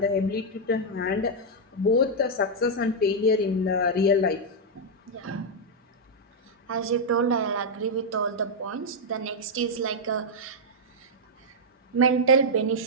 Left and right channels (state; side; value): normal; both; correlation -0.03